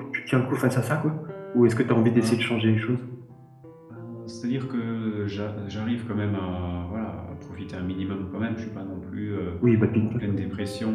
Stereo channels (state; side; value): identical; both; correlation 1.00